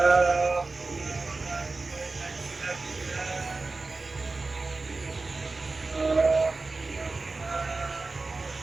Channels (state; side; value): quieter; left; 3.7 dB